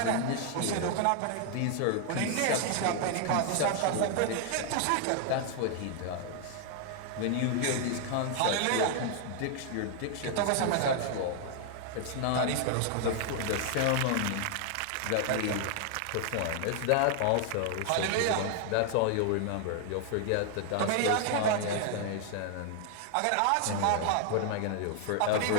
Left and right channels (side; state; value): both; different; correlation 0.00